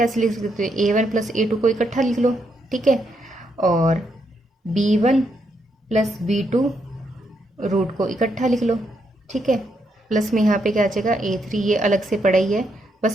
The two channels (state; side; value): normal; both; correlation 0.78